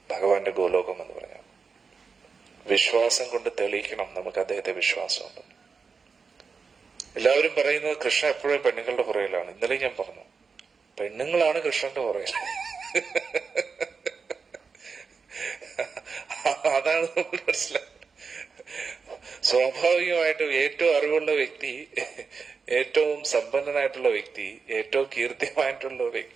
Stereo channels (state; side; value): quieter; left; 5.2 dB